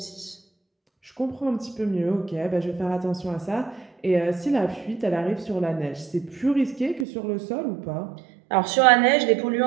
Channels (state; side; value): drops out; left; at 7.1 s